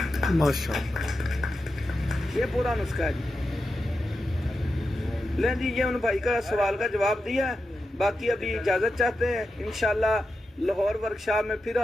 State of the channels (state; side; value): normal; both; correlation 0.89